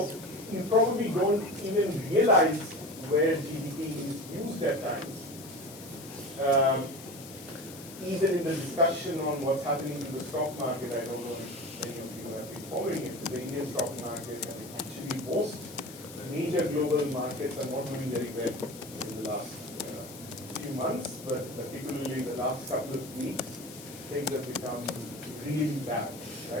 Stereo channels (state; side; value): noise; left; hiss, 16 dB below the sound